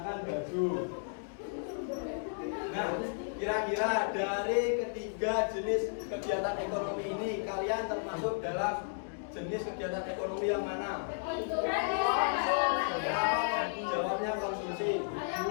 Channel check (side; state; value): right; silent; digital silence